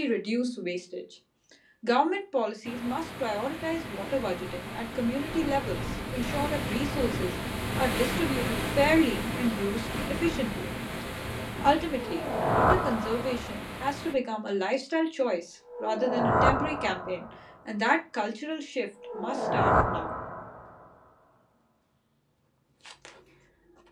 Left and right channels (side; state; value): both; identical; correlation 1.00